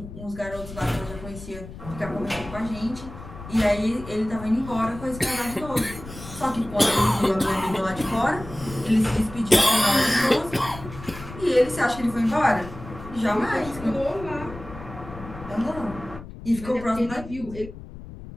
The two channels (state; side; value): noise; left; rumble, 14 dB below the sound